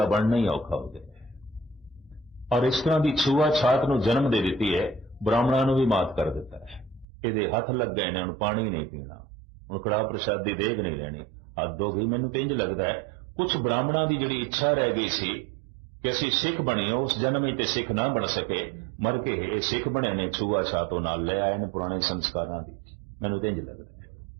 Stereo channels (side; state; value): left; drops out; at 7.1 s